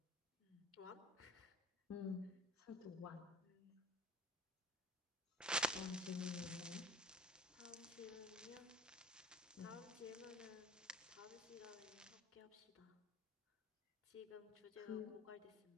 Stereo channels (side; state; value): both; normal; correlation 0.45